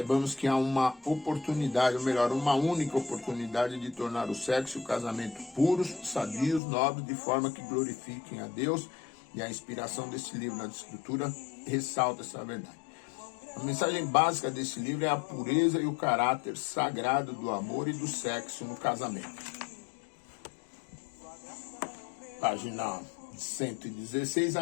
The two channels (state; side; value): drops out; right; at 6.6 s